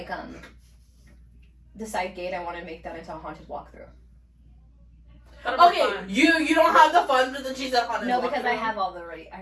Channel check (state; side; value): identical; both; correlation 1.00